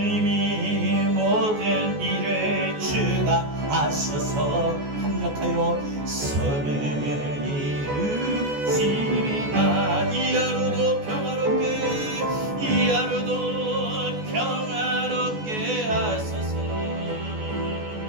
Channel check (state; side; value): late; left; 14 ms